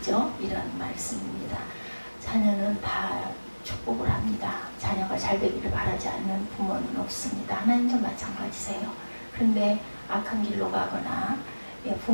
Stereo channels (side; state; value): both; inverted; correlation -1.00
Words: 이런 말씀입니다. 자녀는 다 축복을 합니다. 자녀가 잘 되기를 바라지 않는 부모는 없습니다. 하나님도 마찬가지세요. 그런데 악한 길로 가거나